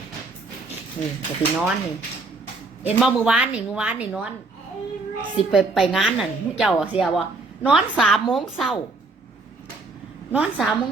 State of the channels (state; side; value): quieter; left; 3.5 dB